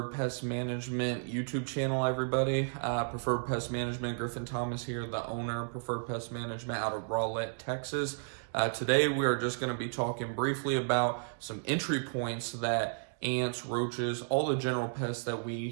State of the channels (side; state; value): left; silent; digital silence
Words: Pest Management YouTube channel, everybody. Preferred Pest Management, Griffin Thomas here, the owner of Preferred Pest Management out of Rowlett, Texas. Today we are just going to be talking briefly about some entry points that ants, roaches, all the general pests that